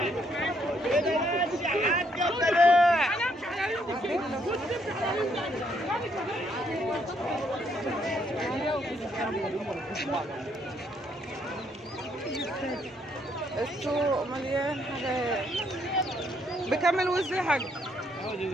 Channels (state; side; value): normal; both; correlation 0.71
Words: السوق مليان حاجات. بكم الوز يا حاج؟